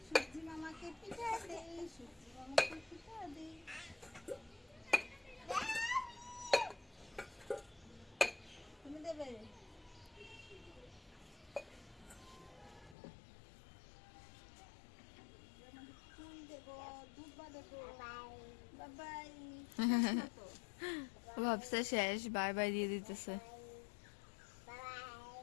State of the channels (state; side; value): drops out; right; at 13.0 s